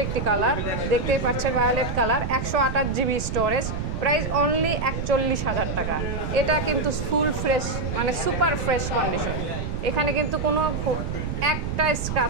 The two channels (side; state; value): right; noise; rumble, 3 dB below the sound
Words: একটি কালার, দেখতেই পাচ্ছেন violet colour, 128 GB storage, price only 41,000 টাকা। এটা কিন্তু ফুল ফ্রেশ, মানে সুপার ফ্রেশ কন্ডিশন, এখানে কিন্তু কোনো একটা